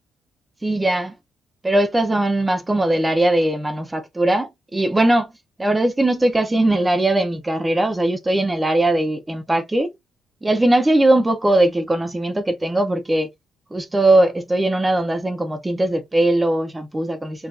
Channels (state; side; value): normal; both; correlation 0.92